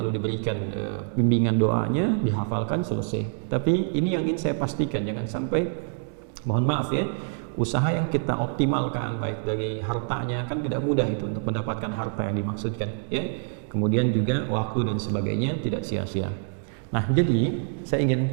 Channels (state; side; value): silent; left; digital silence